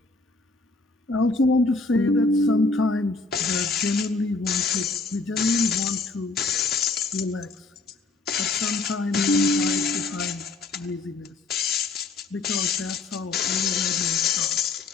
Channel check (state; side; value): quieter; right; 3.7 dB